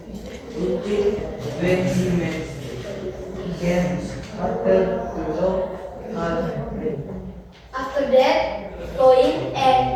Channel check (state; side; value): identical; both; correlation 1.00